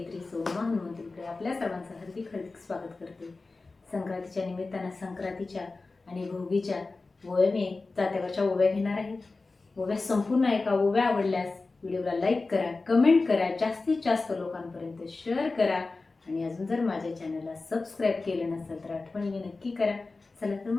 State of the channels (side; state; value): right; quieter; 3.7 dB